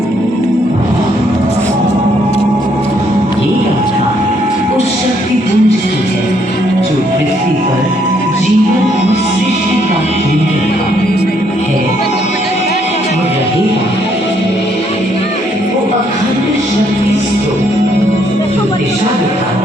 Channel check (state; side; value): normal; both; correlation 0.70